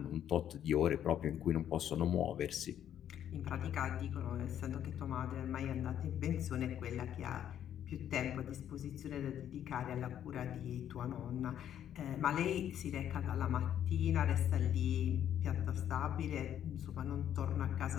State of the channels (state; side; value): quieter; right; 10.2 dB